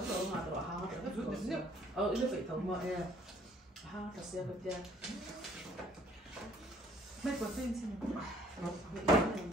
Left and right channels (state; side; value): normal; both; correlation 0.59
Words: rồi mà tụi hàng tụi hết rồi nó phải thống mà hàng thật sự cái tiền Mấy có tên xin.